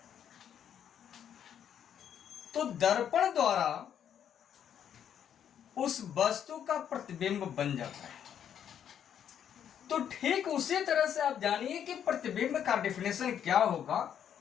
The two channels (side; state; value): right; quieter; 9.1 dB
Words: तो दर्पण द्वारा उस वस्तु का प्रतिबिंब बन जाता है। तो ठीक उसी तरह से आप जानिए कि प्रतिबिंब का डेफिनेशन क्या होगा